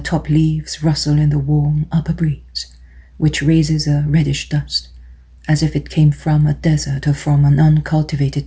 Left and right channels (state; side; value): identical; both; correlation 1.00